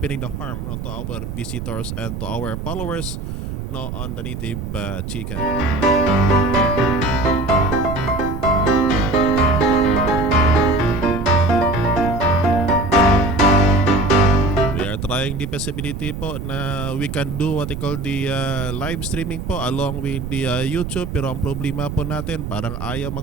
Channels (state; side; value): noise; right; rumble, 7 dB below the sound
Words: the farm, no, to our visitors and to our followers, no, on the native chicken. Trying the possibility po na we can do what they call the live streaming po along with the YouTube, pero ang problema po natin parang ayaw